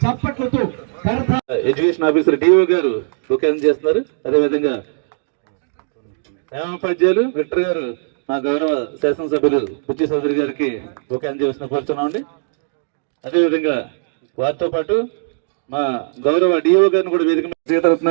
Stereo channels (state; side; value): silent; left; digital silence